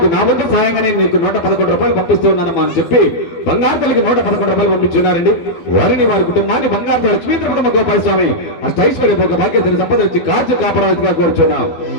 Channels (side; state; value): right; late; 12 ms